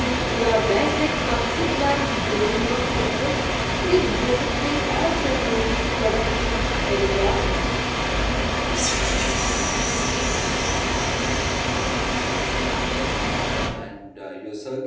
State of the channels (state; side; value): identical; both; correlation 1.00